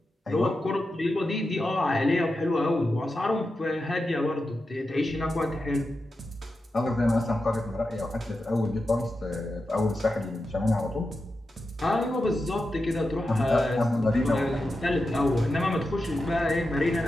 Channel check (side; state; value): both; normal; correlation 0.90